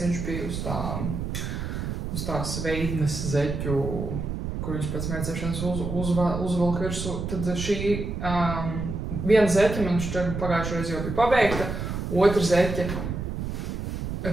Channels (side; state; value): right; noise; rumble, 4 dB below the sound